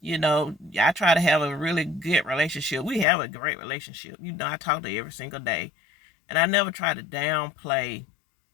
I try to have a really good relationship. We have a great relationship. I talk to her every single day. And I never try to downplay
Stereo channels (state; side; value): drops out; right; at 3.1 s